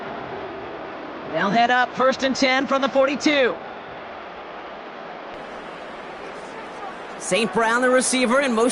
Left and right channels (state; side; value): identical; both; correlation 1.00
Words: They'll head up 1st and 10 from the 42. St. Brown, the receiver, in